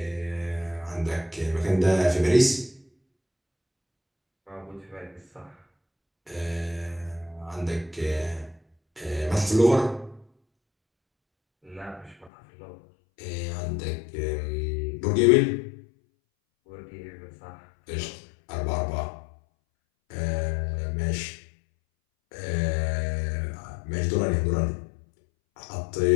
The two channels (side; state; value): right; drops out; at 12.3 s